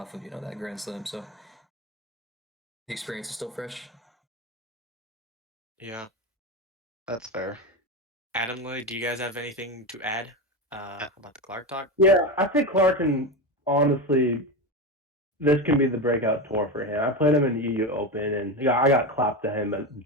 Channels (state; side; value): normal; both; correlation 0.18